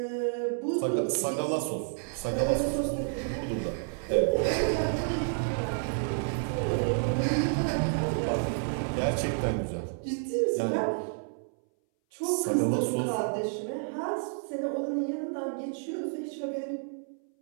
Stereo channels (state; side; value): silent; left; 58 dB below the other